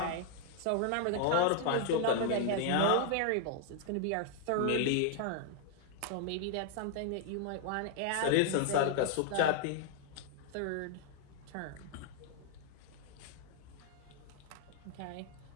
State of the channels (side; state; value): both; different; correlation 0.00